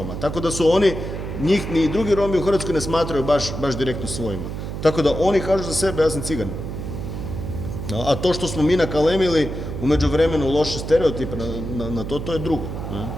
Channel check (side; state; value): right; noise; hum, 6 dB below the sound